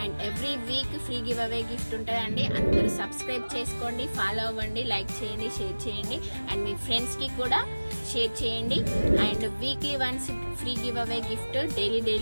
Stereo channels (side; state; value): both; inverted; correlation -1.00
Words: And every week free give away gift ఉంటుందండి. అందరూ సబ్స్క్రైబ్ చేసుకోండి, ఫాలో అవ్వండి, లైక్ చేయండి, షేర్ చేయండి, అండ్ మీ ఫ్రెండ్స్కి కూడా షేర్ చేయండి. And weekly once free give away gift, daily